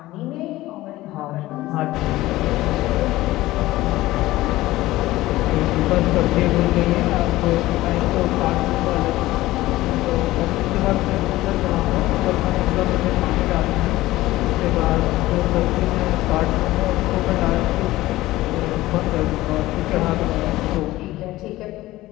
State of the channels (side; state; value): right; quieter; 17.2 dB